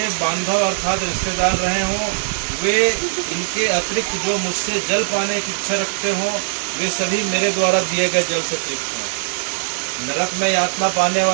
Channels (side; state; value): left; silent; 63 dB below the other